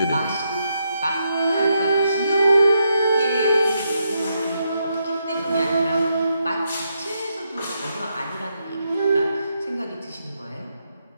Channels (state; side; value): inverted; both; correlation -0.80